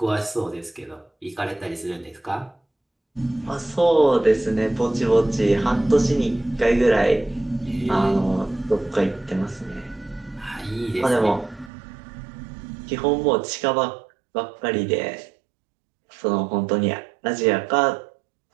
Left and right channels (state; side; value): drops out; left; at 11.7 s